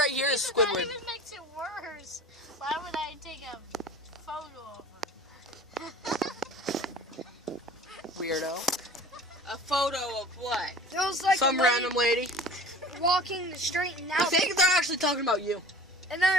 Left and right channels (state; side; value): normal; both; correlation 0.42